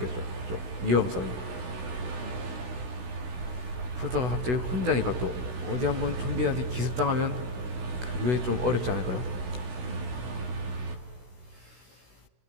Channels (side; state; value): left; late; 16 ms